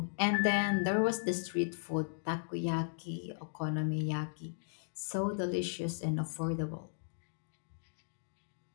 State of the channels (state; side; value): silent; right; digital silence